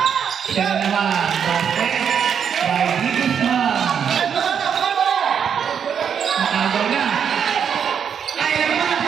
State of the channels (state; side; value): quieter; left; 7.6 dB